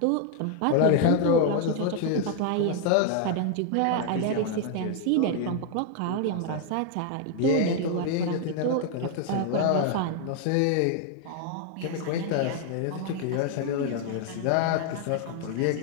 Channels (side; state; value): both; different; correlation 0.00